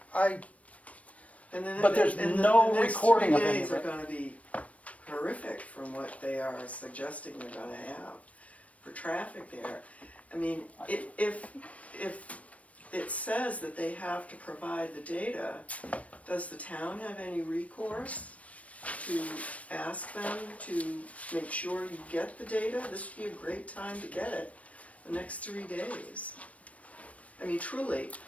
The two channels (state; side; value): late; right; 0.066 ms